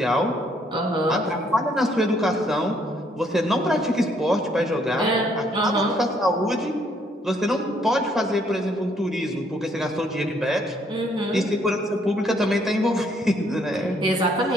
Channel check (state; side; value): normal; both; correlation 0.68